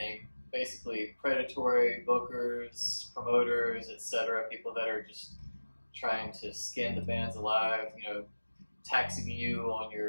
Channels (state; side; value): inverted; both; correlation -1.00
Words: Basically, predatory bookers, promoters, etc., people that are just trying to skin the bands alive, you know, taxing you on